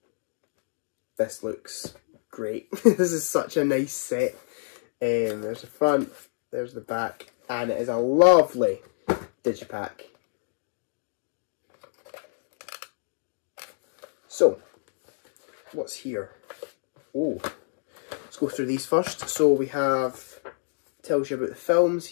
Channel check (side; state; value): right; silent; digital silence